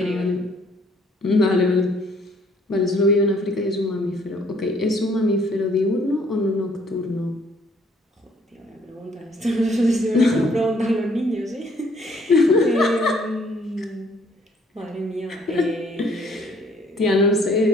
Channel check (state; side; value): normal; both; correlation 0.63